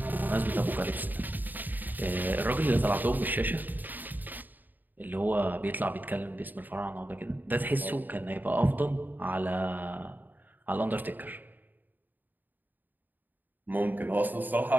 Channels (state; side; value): late; left; 0.088 ms